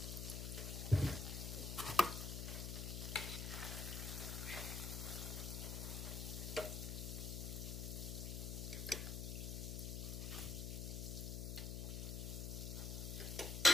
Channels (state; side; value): noise; left; hum, 3 dB below the sound